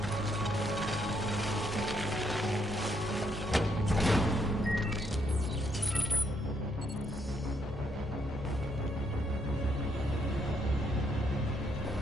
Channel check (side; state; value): both; normal; correlation 0.74